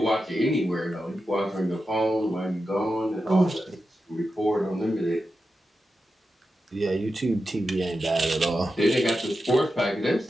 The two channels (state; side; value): normal; both; correlation 0.90